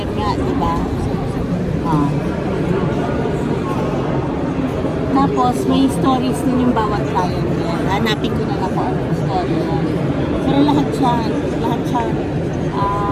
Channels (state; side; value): identical; both; correlation 1.00